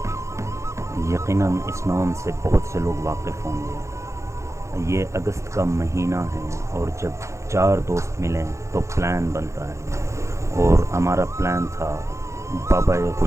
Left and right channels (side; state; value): left; late; 0.14 ms